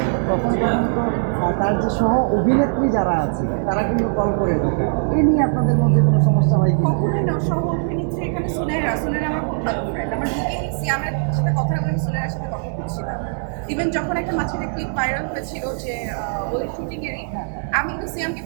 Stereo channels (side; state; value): left; silent; 65 dB below the other